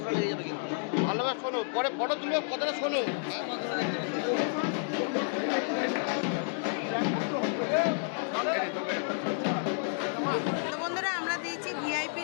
টাকা লেগে যাবে। কিন্তু ভালোভাবে শোনো, পরে ফটো তুলবে, কথাটা শোনো। বন্ধুরা, আমরা দিয়েছি ভিআইপি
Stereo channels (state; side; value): silent; right; digital silence